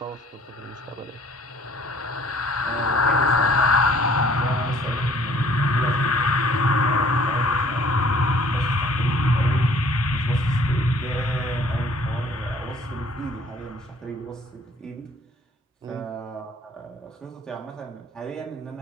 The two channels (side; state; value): both; normal; correlation 0.56